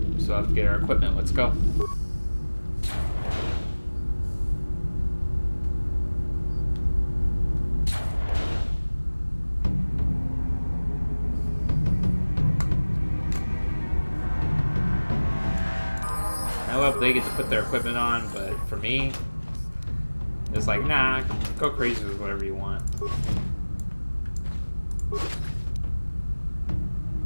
So I have to get our equipment. Let's go. I love they get to put their equipment on, but for me, it's like, nah, go crazy with whatever you want.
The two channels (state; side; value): inverted; both; correlation -1.00